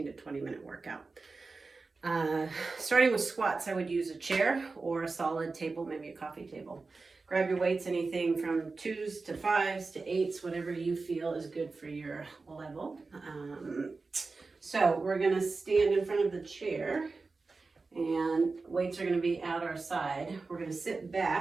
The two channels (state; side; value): quieter; left; 4.0 dB